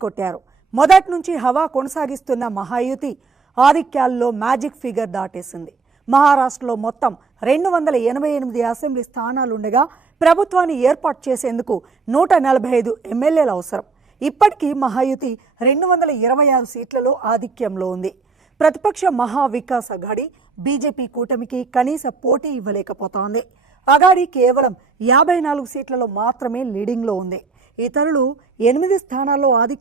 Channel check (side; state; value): left; quieter; 4.5 dB